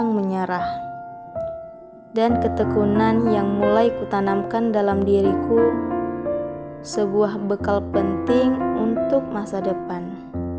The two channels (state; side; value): identical; both; correlation 1.00